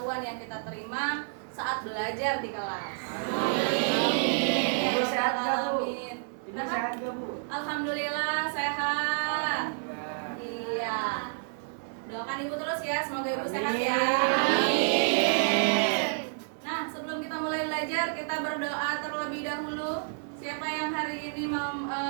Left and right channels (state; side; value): silent; left; 58 dB below the other